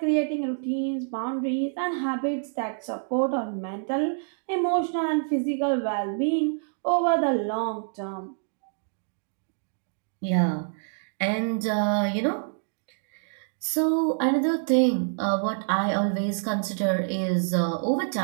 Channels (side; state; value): left; silent; digital silence